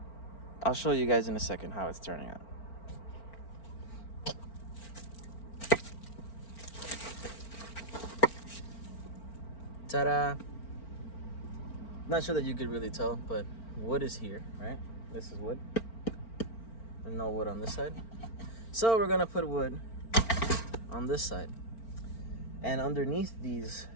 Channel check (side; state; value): right; late; 4.4 ms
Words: I'll show you guys in a second how it's turning out. Ta-da! Not sure that you could really tell, but wood is here, right? This is wood. And no wood on this side. So we're gonna put wood on this side. And underneath these